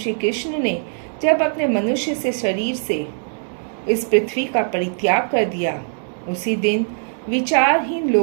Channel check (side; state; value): left; silent; digital silence